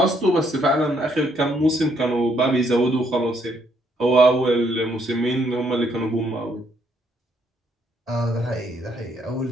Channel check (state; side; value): normal; both; correlation 0.71